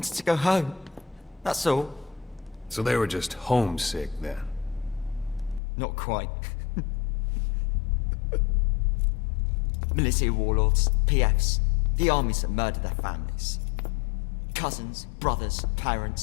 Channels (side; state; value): right; drops out; at 5.6 s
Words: to go home. That's all. So they were just homesick then. Not quite. Militia warlords, PFs, the armies that murdered their families. Cousins, brothers,